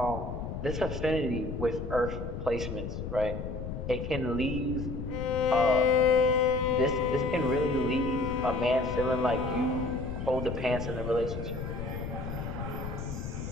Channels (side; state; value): left; noise; rumble, 6 dB below the sound